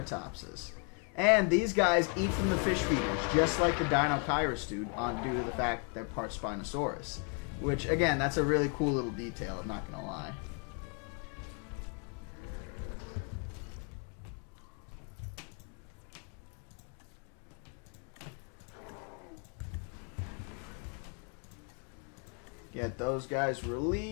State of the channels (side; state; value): right; quieter; 38.3 dB